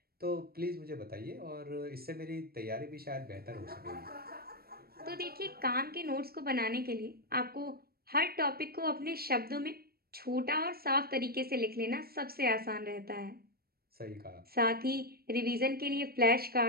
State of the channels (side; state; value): left; late; 0.44 ms